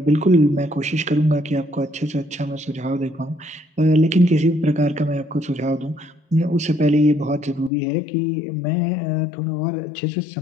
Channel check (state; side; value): drops out; right; at 7.7 s